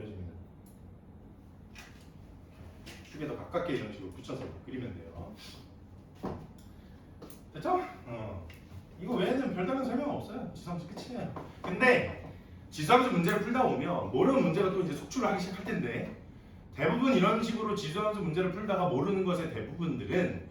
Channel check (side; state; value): both; identical; correlation 1.00